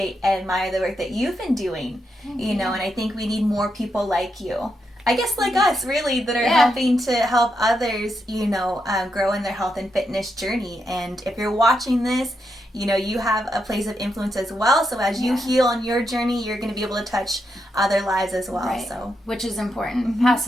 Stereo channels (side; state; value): both; normal; correlation 0.83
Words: and admire the work that you've been doing. You know, and I think we need more people like you. I guess like us, really, that are helping to help others, you know, grow in their health and fitness journey. And if you're watching this, you know, you have a place of influence as well. So as you heal on your journey, you're going to be able to touch other lives as well. Right. So, which is important. Pass